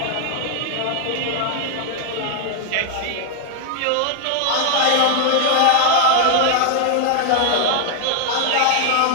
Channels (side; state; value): both; different; correlation 0.00